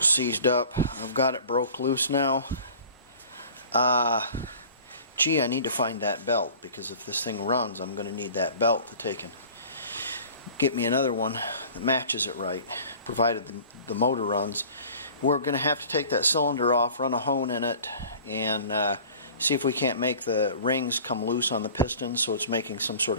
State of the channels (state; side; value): inverted; both; correlation -0.45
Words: seized up. I've got it broke loose now. Gee, I need to find that belt, because if this thing runs I'm going to need that belt to take and get me another one that matches it right, provided the motor runs. We're going to have to take that cylinder off, run a hone in it, and see if we can't make the rings come loose on the piston so it's making some sort